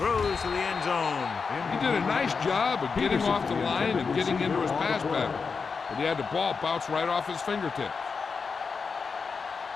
to the end zone. He did a nice job of getting off the line and getting into his pass pattern, but he had the ball bounce right off his fingertips.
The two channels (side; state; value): right; quieter; 5.2 dB